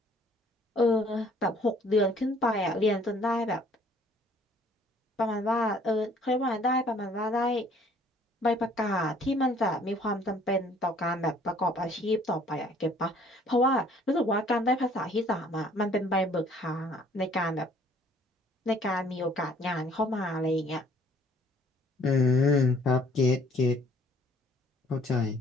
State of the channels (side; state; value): both; normal; correlation 0.58